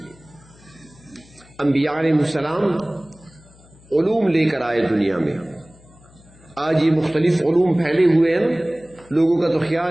انبیاء علیہ السلام علوم لے کر آئے دنیا میں. آج یہ مختلف علوم پھیلے ہوئے ہیں. لوگوں کا تو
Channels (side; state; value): left; noise; hum, 26 dB below the sound